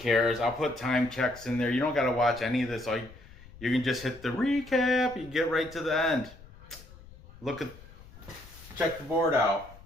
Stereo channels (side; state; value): left; noise; rumble, 20 dB below the sound